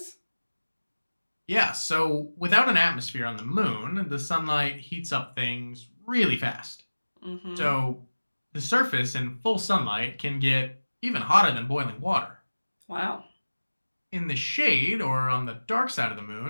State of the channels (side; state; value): both; inverted; correlation -1.00